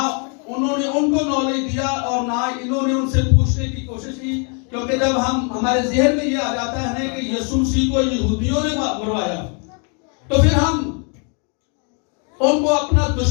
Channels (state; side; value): quieter; right; 38.2 dB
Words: उन्होंने उनको नॉलेज दिया, और ना इन्होंने उनसे पूछने की कोशिश की। क्योंकि जब हमारे ज़हन में ये आ जाता है कि यीशु मसीह को यहूदियों ने मरवाया, तो फिर हम उनको अपना